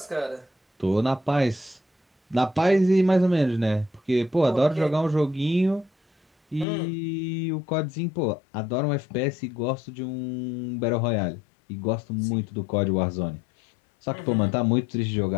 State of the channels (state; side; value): drops out; right; at 6.7 s